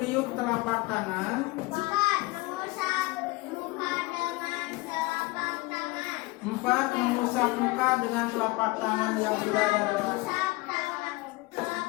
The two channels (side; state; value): right; quieter; 22.6 dB